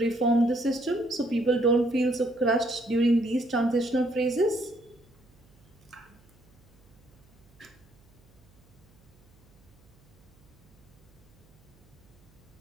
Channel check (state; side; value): noise; right; hum, 29 dB below the sound